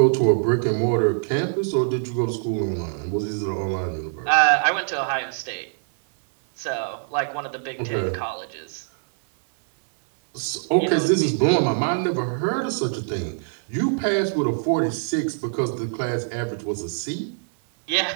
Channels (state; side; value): silent; left; 63 dB below the other